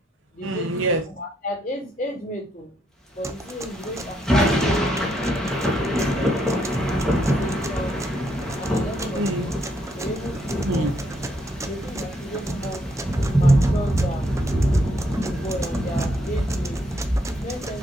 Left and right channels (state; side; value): normal; both; correlation 0.75